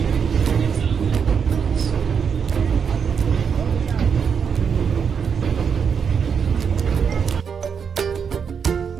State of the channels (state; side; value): quieter; left; 6.7 dB